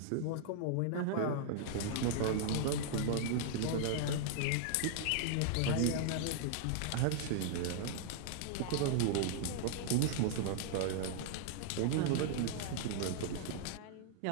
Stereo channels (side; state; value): both; different; correlation -0.01